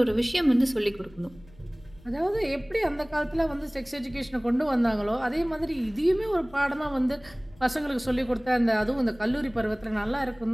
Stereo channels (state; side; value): noise; left; rumble, 25 dB below the sound